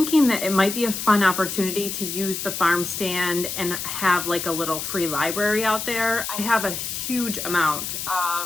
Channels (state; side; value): noise; left; hiss, 5 dB below the sound